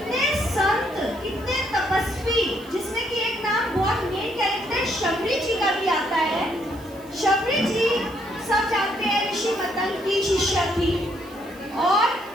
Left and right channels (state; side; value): noise; right; hiss, 24 dB below the sound